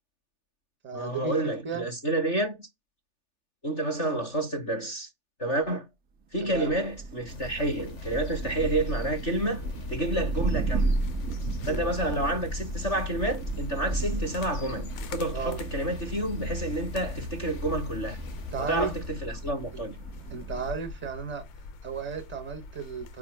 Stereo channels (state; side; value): late; right; 3.4 ms